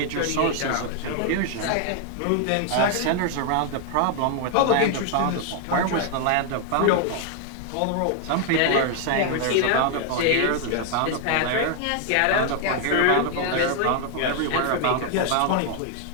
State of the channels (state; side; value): different; both; correlation 0.00